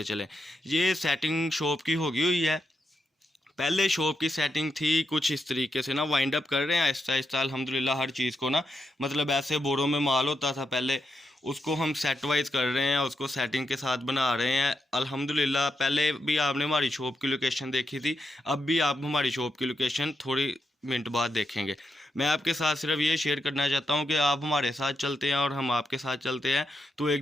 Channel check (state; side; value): normal; both; correlation 0.84